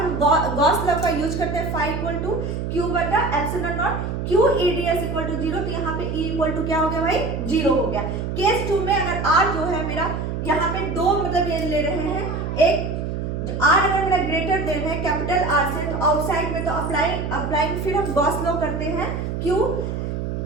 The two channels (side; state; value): right; noise; hum, 3 dB below the sound